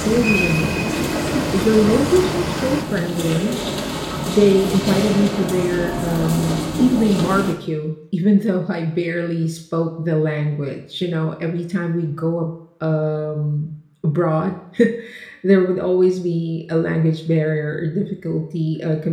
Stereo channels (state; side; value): identical; both; correlation 1.00